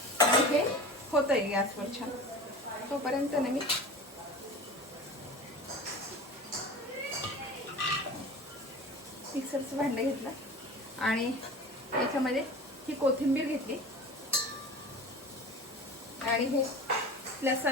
आणि हे होतंय गॅसवर छान. तोपर्यंत ना मी मिक्सरचं भांडं घेतलं आणि याच्यामध्ये ही कोथिंबीर घेतली आणि हे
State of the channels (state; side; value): normal; both; correlation 0.35